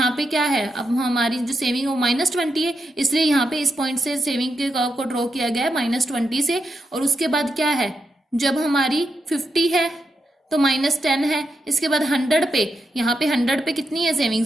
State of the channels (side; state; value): both; normal; correlation 0.84